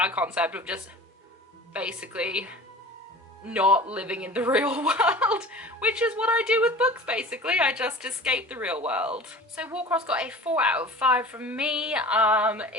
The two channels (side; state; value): both; normal; correlation 0.39